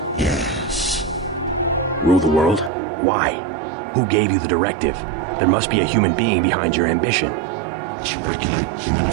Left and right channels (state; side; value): drops out; left; at 2.7 s